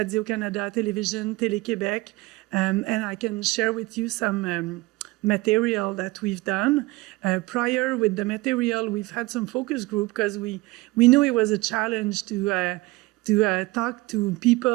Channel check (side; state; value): left; quieter; 21.3 dB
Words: television, Télé-Québec, and I can share with you some material that we've done. Prior with the material, we've had some focus group because we knew it was a challenge to talk to